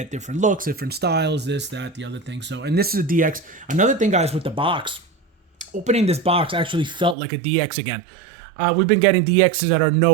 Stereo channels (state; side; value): drops out; left; at 7.2 s